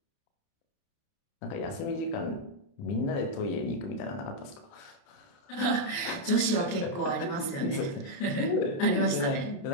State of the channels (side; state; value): right; late; 29 ms